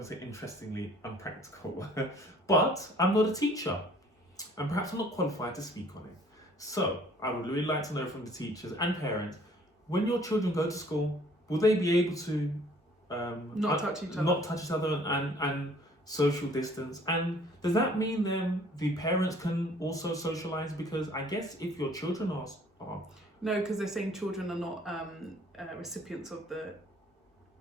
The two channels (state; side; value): normal; both; correlation 0.56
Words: say interestingly unpractical, but I'm not a teacher, and perhaps I'm not qualified to speak on it. So I would really like to know from the teachers and parents, when your children go to school, will they be able to not touch each other and social distance? And does that mean then the parents can also socialise? Because I guess if your children are no, because they're saying children are not recipients of the